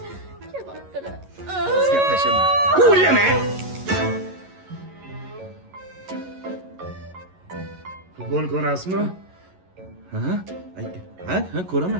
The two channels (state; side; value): late; left; 11 ms